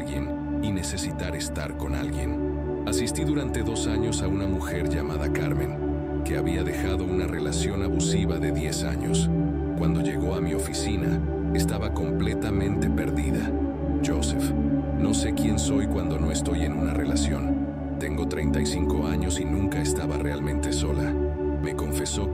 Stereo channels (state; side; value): identical; both; correlation 1.00